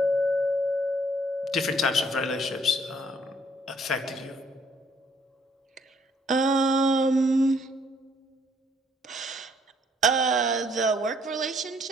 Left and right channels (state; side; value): normal; both; correlation 0.65